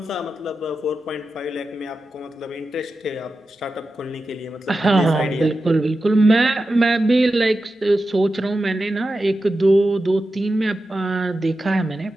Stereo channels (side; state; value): both; normal; correlation 0.91